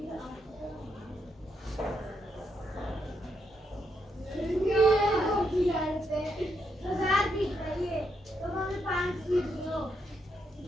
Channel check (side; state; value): both; normal; correlation 0.79